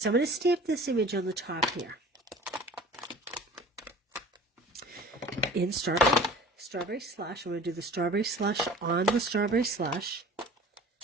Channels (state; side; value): normal; both; correlation 0.44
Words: I'm going to stamp this image on the top here. In strawberry slush. I'm going to do the strawberry slush on the strawberry slush.